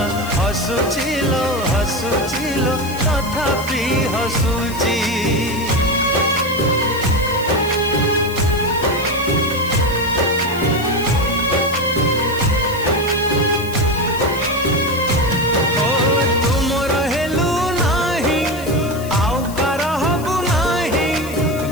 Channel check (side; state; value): left; noise; hiss, 16 dB below the sound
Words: हसुचिलो हसुचिलो तथापि हसुची।